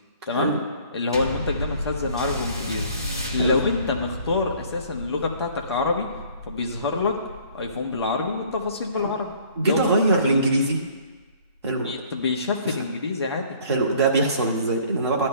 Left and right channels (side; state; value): both; inverted; correlation -0.55